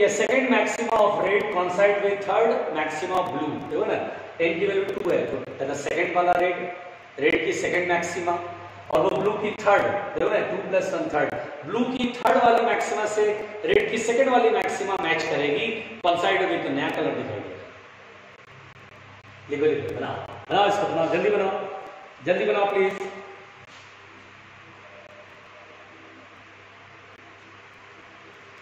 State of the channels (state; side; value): identical; both; correlation 1.00